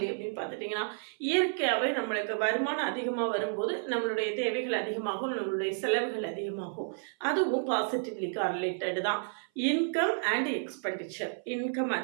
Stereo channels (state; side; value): silent; left; 56 dB below the other